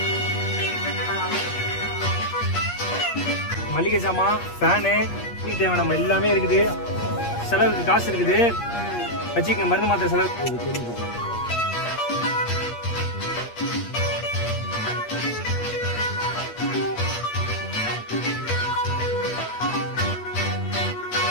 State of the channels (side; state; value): right; late; 8.5 ms